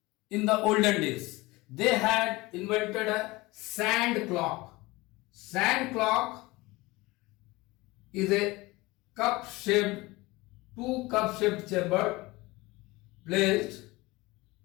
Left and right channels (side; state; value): right; quieter; 21.6 dB